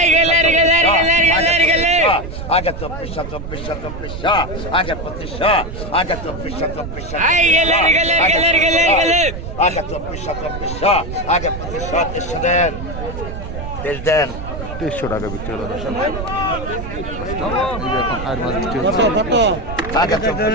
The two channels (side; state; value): right; noise; rumble, 8 dB below the sound